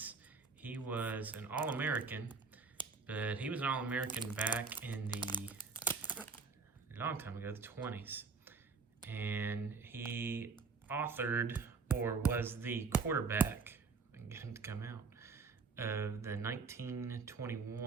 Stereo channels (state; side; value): quieter; left; 4.8 dB